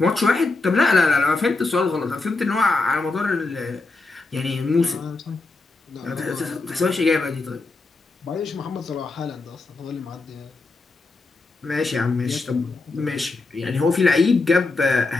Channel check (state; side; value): quieter; right; 3.5 dB